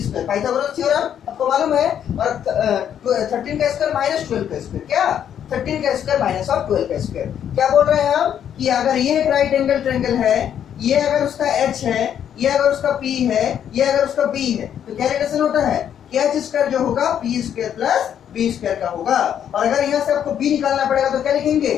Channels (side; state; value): right; quieter; 9.3 dB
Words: पाइथागोरस थ्योरम आपको मालूम है। और 13 का स्क्वायर माइनस 12 का स्क्वायर, क्या 13 का स्क्वायर माइनस ऑफ 12 का स्क्वायर। क्या बोल रहे हैं हम कि अगर ये एक राइट एंगल ट्रायंगल है, ये अगर उसका h है, ये अगर उसका p है, ये अगर उसका b है, तो क्या रिलेशन होता है कि h स्क्वायर जो होगा p square plus b square का होगा। और अगर यहाँ से आपको b निकालना पड़ेगा तो क्या लिखेंगे?